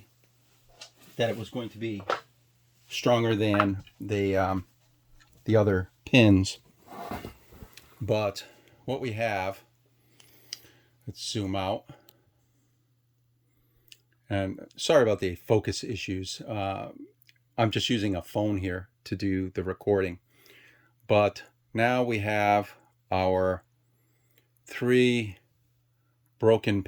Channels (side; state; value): both; identical; correlation 1.00